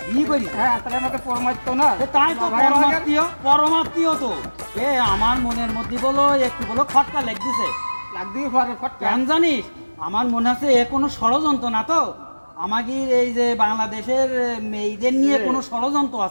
বিয়ে করিস? হ্যাঁ তাহলে আমাকে পরমাত্ম না তাই তো ভাই আমাকে- পরমাত্মীয় পরমাত্মীয় তো। আমার মনের মধ্যে বলো একটু বলো খটকা লেগ দিছে। লাগতেই পারে ফটকা। কেন জানিস আমার মনে আছে এ কোনো ষড়যন্ত্র না তো? আমাদের এই যে বাংলাদেশের মেয়েদের নিয়ে কোনো ষড়যন্ত্র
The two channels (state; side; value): inverted; both; correlation -1.00